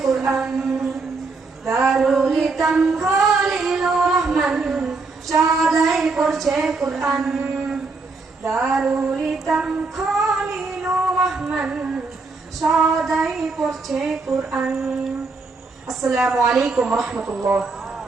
কোরআন। দারুল ইতাম খলিলুর রহমান সদাই পড়ছে কোরআন। দারুল ইতাম খলিলুর রহমান সদাই পড়ছে কোরআন। আসসালামু আলাইকুম রহমতুল্লাহ।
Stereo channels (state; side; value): quieter; left; 4.0 dB